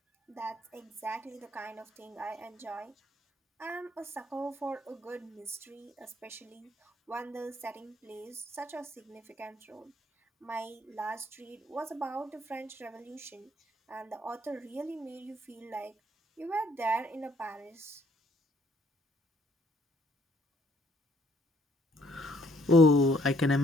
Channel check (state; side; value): normal; both; correlation 0.66